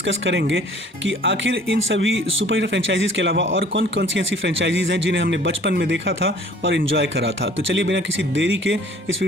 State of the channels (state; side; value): normal; both; correlation 0.52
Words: करेंगे कि आखिर इन सभी सुपर हीरो फ्रेंचाइजीज़ के अलावा और कौन कौन सी ऐसी फ्रेंचाइजीज़ हैं जिन्हें हमने बचपन में देखा था और इन्जॉय करा था। तो चलिए बिना किसी देरी के इस